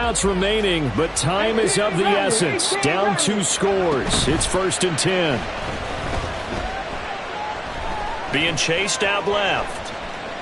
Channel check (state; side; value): identical; both; correlation 1.00